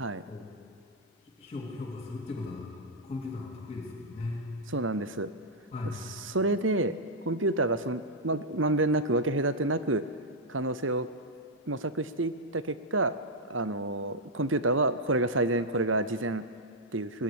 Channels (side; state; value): both; normal; correlation -0.03